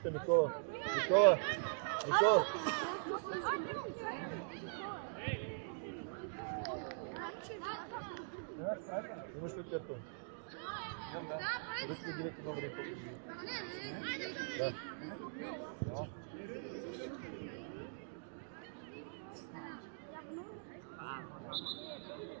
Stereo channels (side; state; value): left; silent; digital silence